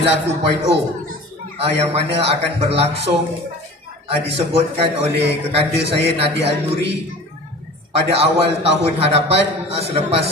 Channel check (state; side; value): normal; both; correlation 0.40